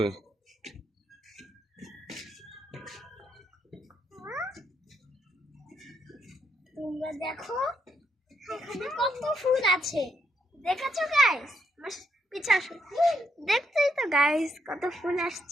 তোমরা দেখো এখানে কত ফুল আছে, দেখেছো গাইস? পিছে আসো, দেখতেই তো গাইস কত ফুল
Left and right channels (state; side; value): normal; both; correlation 0.77